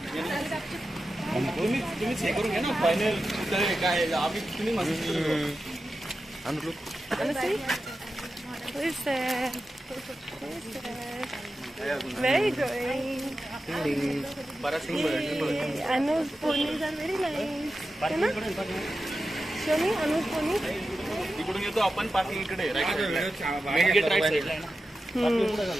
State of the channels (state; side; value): normal; both; correlation 0.92